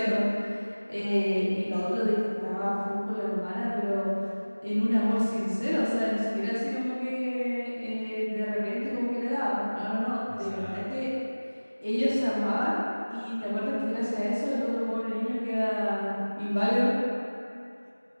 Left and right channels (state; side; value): inverted; both; correlation -1.00